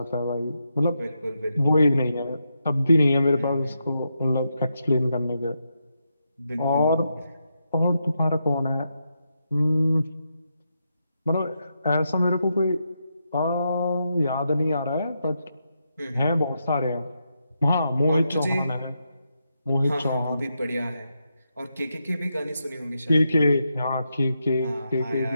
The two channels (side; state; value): both; inverted; correlation -0.84